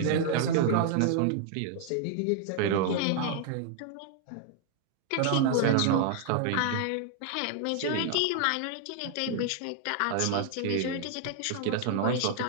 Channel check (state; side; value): different; both; correlation 0.00